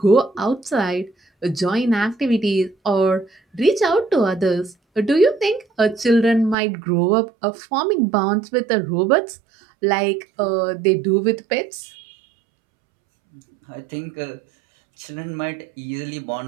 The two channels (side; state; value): left; drops out; at 6.6 s